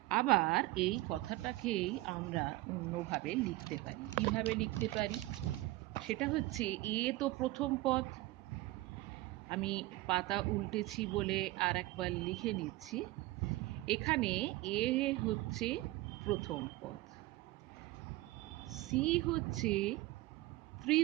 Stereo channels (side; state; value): left; quieter; 18.7 dB